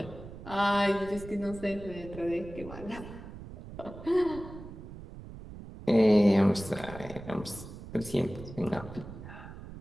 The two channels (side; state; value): right; noise; rumble, 13 dB below the sound